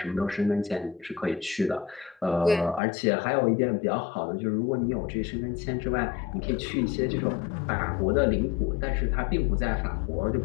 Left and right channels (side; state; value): right; drops out; at 2.8 s